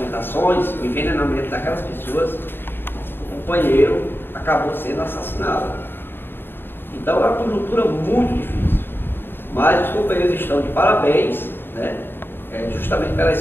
o envenenamento daquelas pessoas. O companheiro acabou sendo assassinado. Então é uma conjuntura muito difícil, mas os companheiros estão de parabéns, justamente pela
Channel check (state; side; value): late; right; 0.10 ms